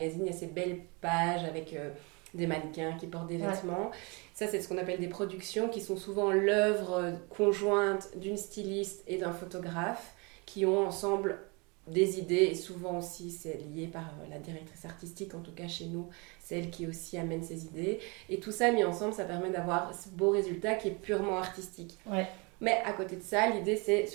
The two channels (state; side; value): quieter; left; 29.7 dB